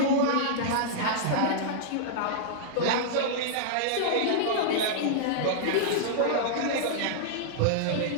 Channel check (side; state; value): both; different; correlation -0.01